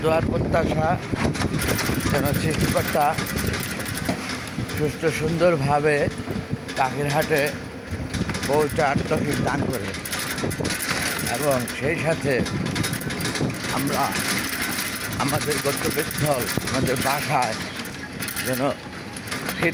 দোয়ার প্রত্যাশা যেন সৃষ্টিকর্তা সুস্থ সুন্দরভাবে পাখির হাটে পৌঁছার তৌফিক দান করে এবং সেই সাথে আমরা আমাদের গন্তব্যস্থল আমাদের বাসায় যেন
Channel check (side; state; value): both; identical; correlation 1.00